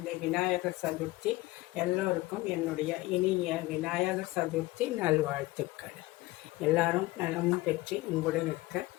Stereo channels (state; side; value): quieter; right; 19.5 dB